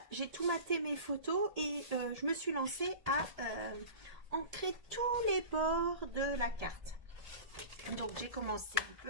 j'ai tout maté mes photos et je me suis lancée à ancrer tous les bords de la carte. Donc j'ai commencé un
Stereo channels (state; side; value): late; left; 1.8 ms